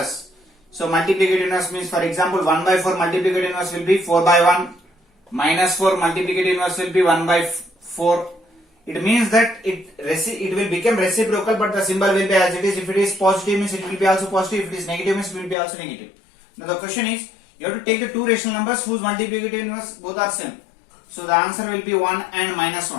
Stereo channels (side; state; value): right; drops out; at 15.6 s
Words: So multiplicative inverse means, for example, 1 by 4 multiplicative inverse will be 4 by 1. Minus 4 multiplicative inverse will be 1 by 4. It means that it will become reciprocal, but the symbol will be as it is. If it is positive means it will be also positive. If it is negative means it will be also negative. Now the question is, you have to take the two rational numbers whose multiplicative inverse both are same. So the answer will be 1 and minus